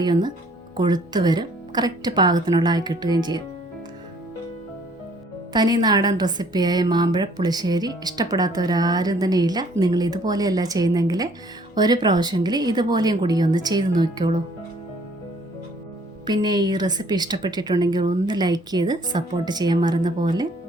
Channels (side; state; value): both; normal; correlation 0.59